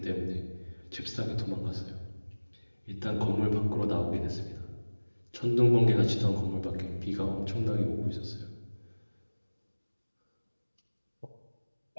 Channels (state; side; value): inverted; both; correlation -1.00